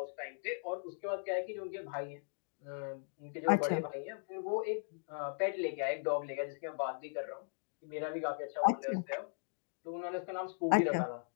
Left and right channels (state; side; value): silent; right; digital silence